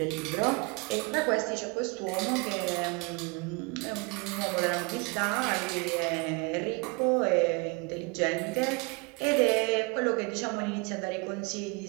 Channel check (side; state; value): left; quieter; 29.5 dB